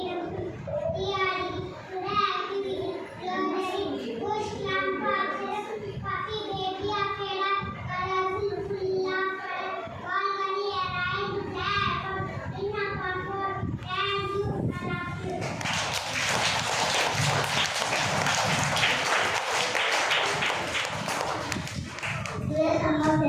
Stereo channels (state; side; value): identical; both; correlation 1.00